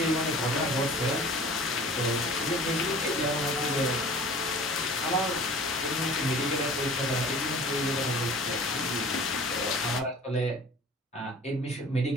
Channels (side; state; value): both; normal; correlation 0.43